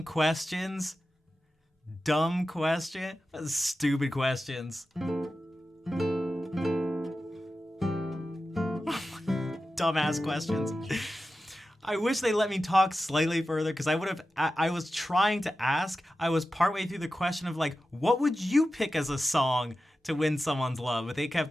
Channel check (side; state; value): both; normal; correlation 0.93